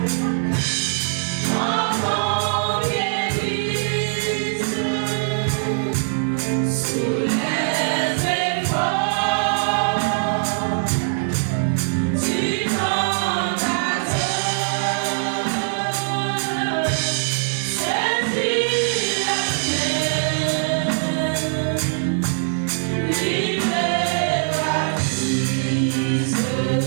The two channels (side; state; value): left; silent; 64 dB below the other